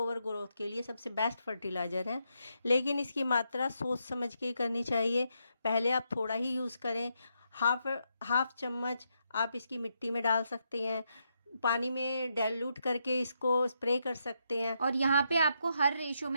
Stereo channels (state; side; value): inverted; both; correlation -0.81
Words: ग्रोथ के लिए सबसे बेस्ट फर्टिलाइज़र है। लेकिन इसकी मात्रा सोच समझ के करनी चाहिए। पहले आप थोड़ा ही यूज़ करें, हाफ चम्मच आप इसकी मिट्टी में डाल सकते हैं, पानी में डाइल्यूट करके इसको स्प्रे कर सकते हैं। और यहाँ पे आपको हर रेशो